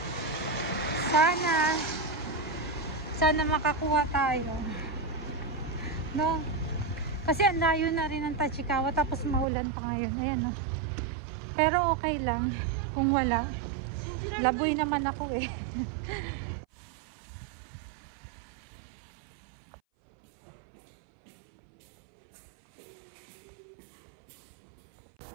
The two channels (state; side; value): drops out; left; at 9.5 s